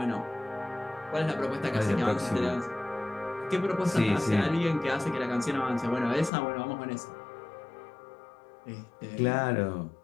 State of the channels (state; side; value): drops out; right; at 6.3 s